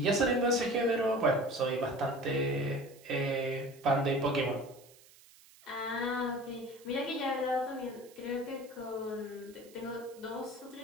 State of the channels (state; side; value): noise; right; hiss, 24 dB below the sound